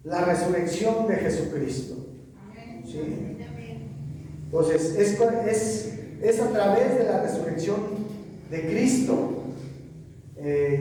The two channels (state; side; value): identical; both; correlation 1.00